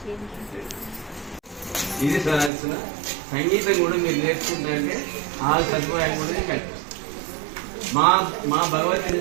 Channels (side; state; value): left; drops out; at 2.5 s